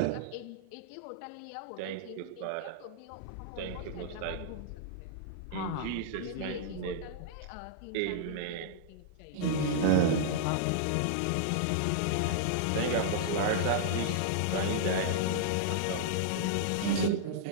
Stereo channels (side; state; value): both; different; correlation -0.02